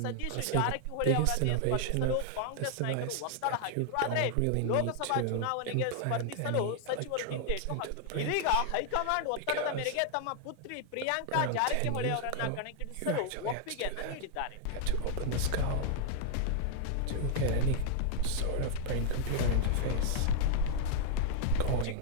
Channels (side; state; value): both; different; correlation 0.00